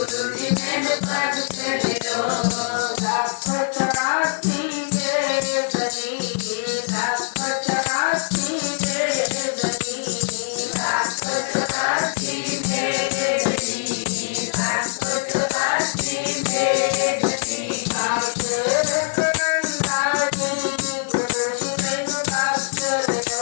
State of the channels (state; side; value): silent; right; digital silence